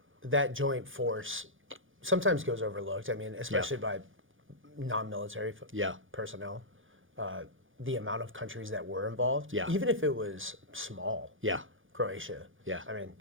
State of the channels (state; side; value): late; left; 0.58 ms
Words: that joint force. Sometimes goes overlooked. I mean, especially by non-military personnel. The amount of countries that were involved, even if it was small. Croatia. I mean,